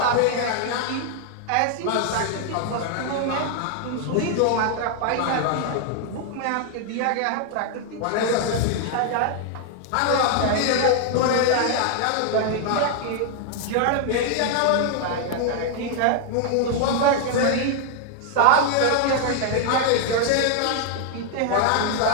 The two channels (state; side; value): different; both; correlation 0.00